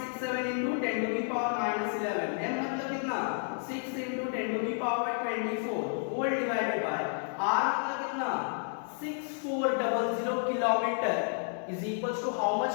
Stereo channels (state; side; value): silent; right; 57 dB below the other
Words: into 10 to the power minus 11, m मतलब कितना 6 into 10 to the power 24 whole divided by r मतलब कितना 6400 kilometre is equals to how much